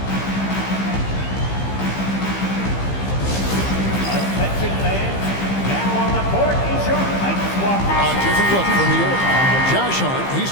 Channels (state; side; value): late; right; 15 ms